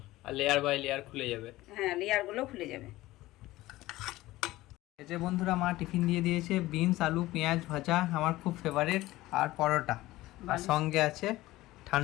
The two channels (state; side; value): quieter; right; 17.6 dB